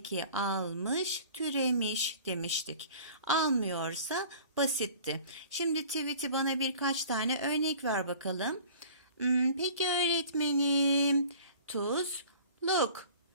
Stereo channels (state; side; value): inverted; both; correlation -0.46